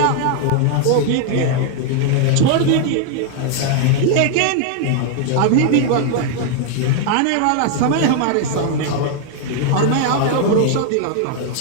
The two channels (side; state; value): both; different; correlation 0.00